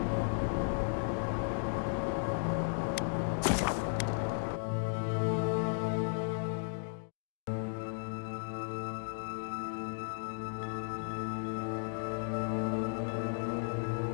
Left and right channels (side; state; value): right; silent; digital silence